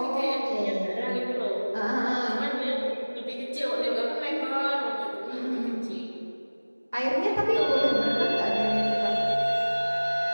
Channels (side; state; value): both; inverted; correlation -1.00